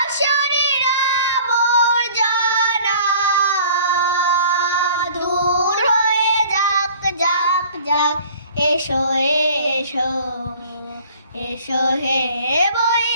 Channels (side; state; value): both; inverted; correlation -0.50